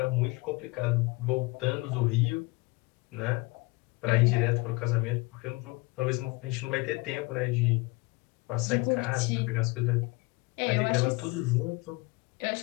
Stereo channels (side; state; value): right; quieter; 24.8 dB